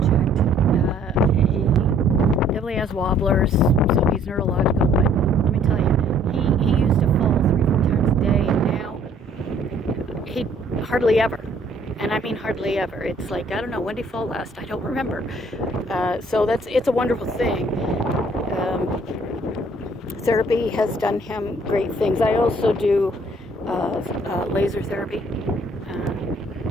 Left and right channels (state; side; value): normal; both; correlation 0.60